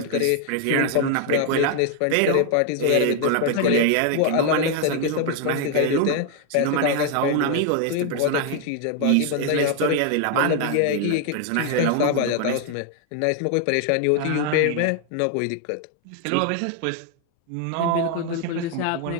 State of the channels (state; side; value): different; both; correlation 0.00